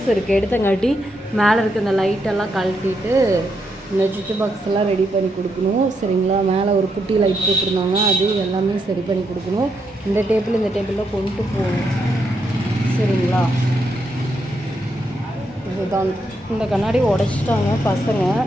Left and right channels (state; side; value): normal; both; correlation 0.80